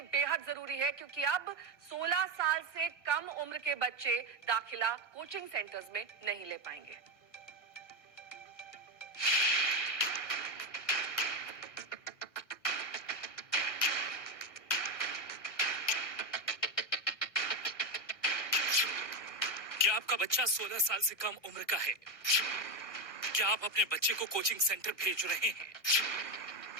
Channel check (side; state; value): right; late; 1.7 ms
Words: बेहद जरूरी है क्योंकि अब 16 साल से कम उम्र के बच्चे दाखिला कोचिंग सेंटर्स में नहीं ले पाएंगे। क्या आपका बच्चा 16 साल से कम उम्र का है? क्या आप अपने बच्चे को कोचिंग सेंटर भेज रहे हैं?